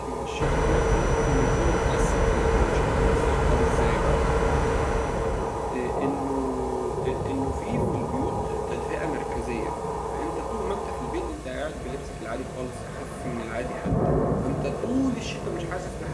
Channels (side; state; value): both; identical; correlation 1.00